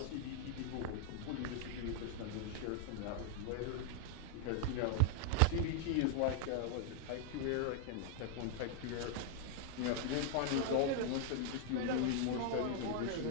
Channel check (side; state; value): both; different; correlation 0.00